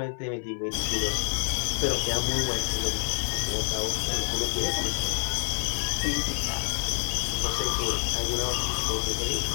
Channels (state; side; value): silent; right; 58 dB below the other